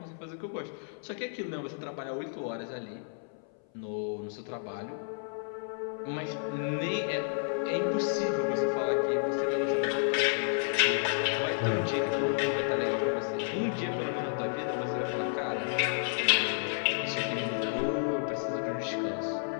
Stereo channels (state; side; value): silent; right; 57 dB below the other